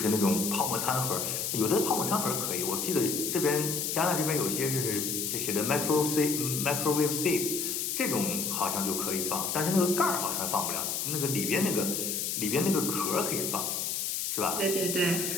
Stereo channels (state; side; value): noise; left; hiss, 1 dB below the sound